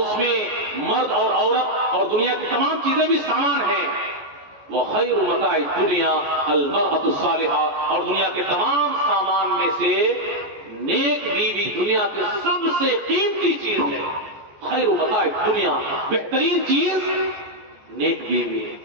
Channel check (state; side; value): late; left; 14 ms